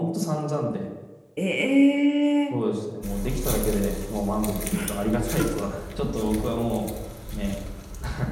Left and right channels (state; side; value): identical; both; correlation 1.00